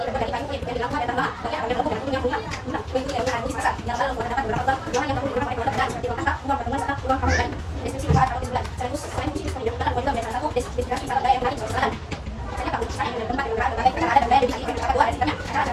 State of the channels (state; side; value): identical; both; correlation 1.00